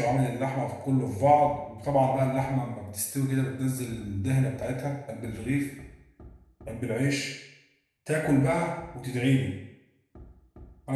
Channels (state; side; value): identical; both; correlation 1.00